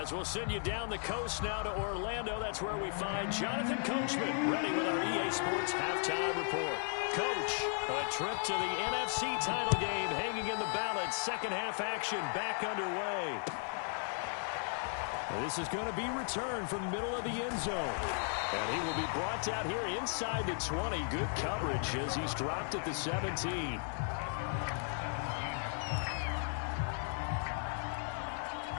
we'll send you down the coast now to Orlando, that's where we find Jonathan Coachman ready with our EA Sports Halftime Report. Coach, a trip to the NFC title game hanging in the balance. 2nd half action back underway. This is going to be returned from the middle of the end zone. And he will be brought down here inside the 20. Good coverage as he's dropped at the 17.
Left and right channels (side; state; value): right; silent; 54 dB below the other